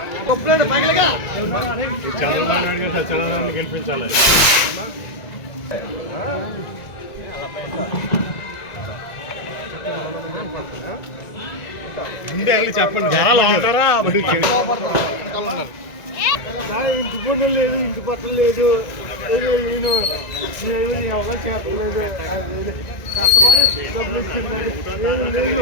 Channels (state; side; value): late; right; 1.9 ms